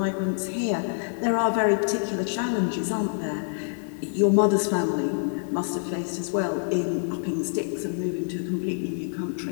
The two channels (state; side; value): silent; right; digital silence